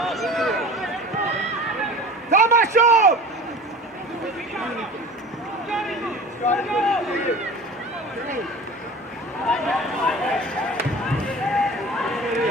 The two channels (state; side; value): normal; both; correlation 0.39